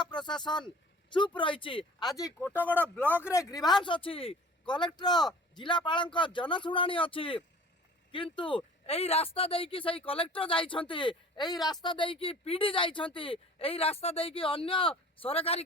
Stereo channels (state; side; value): normal; both; correlation 0.46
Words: प्रशासन चुप रही आज कोटगड़ ब्लॉक रे ग्रीभांस अच्छी कलेक्टर जिलापाल जनशुणाणी अच्छी किंतु यही रास्ता देकी सही कलेक्टर जाइछंती यही रास्ता देकी पीडी जाइछंती यही रास्ता देकी अन्य सरकारी